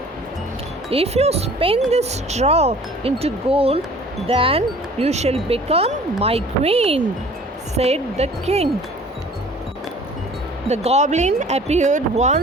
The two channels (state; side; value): normal; both; correlation 0.50